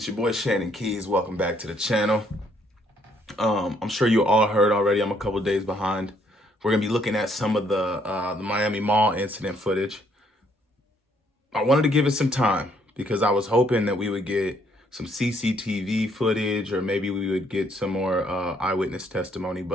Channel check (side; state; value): both; normal; correlation 0.68